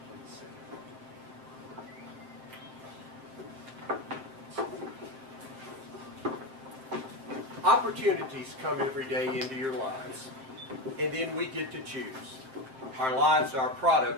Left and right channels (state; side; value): late; left; 7.6 ms